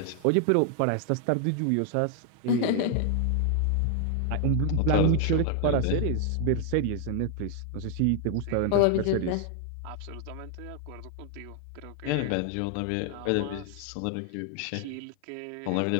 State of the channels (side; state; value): both; different; correlation 0.00